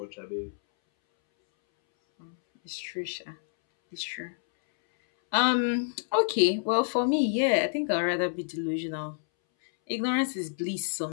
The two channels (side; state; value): right; silent; 59 dB below the other